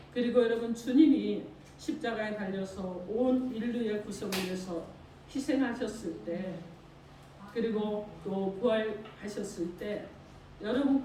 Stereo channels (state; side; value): identical; both; correlation 1.00